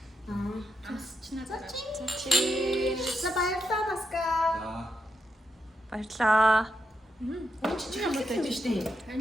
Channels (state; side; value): normal; both; correlation 0.83